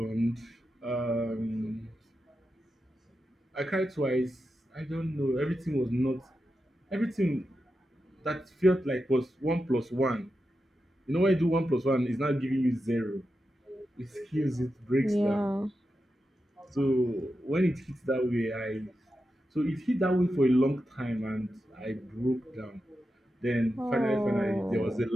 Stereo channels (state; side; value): normal; both; correlation 0.89